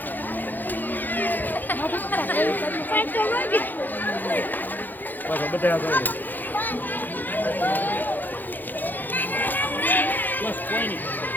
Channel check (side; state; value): right; late; 0.087 ms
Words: બસ બધા બસ કોઈ નહીં